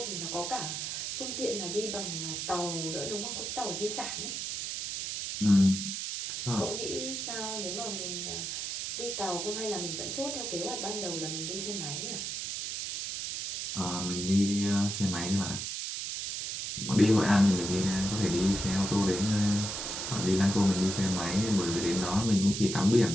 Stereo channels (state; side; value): noise; right; hiss, 4 dB below the sound